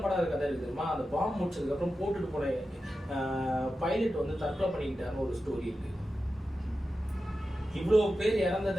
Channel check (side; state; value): both; normal; correlation 0.92